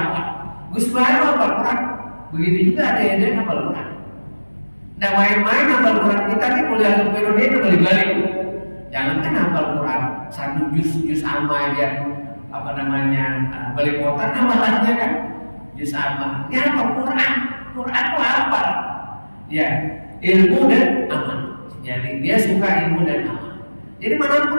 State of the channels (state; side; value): inverted; both; correlation -1.00